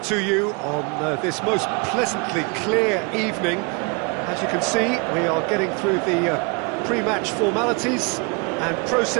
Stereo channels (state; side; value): quieter; left; 31.1 dB